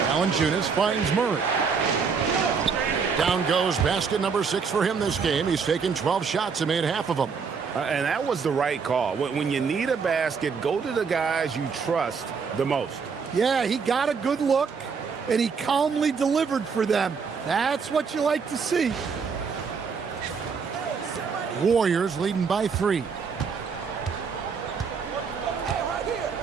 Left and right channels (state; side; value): quieter; left; 5.7 dB